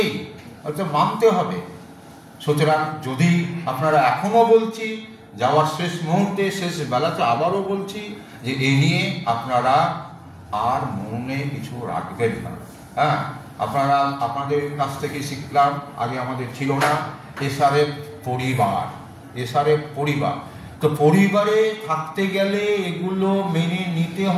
হয়তো মানতে হবে। সুতরাং যদি আপনারা এখনও বলছি, যাওয়ার শেষ মুহূর্তে শেষ বেলাতে আবারও বলছি যে এই নিয়ে আপনারা আর মনে কিছু রাখবেন না। আপনারা আপনাদের কাছ থেকে শিখলাম, আগে আমাদের ছিল না, এসআরএফ পরিবার। এসআরএফ পরিবার, তো পরিবারে থাকতে গেলে এগুলো মেনে নিতে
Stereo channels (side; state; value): both; identical; correlation 1.00